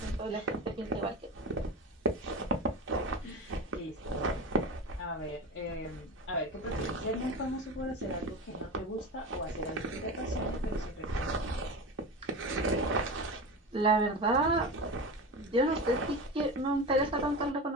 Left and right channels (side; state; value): both; normal; correlation 0.26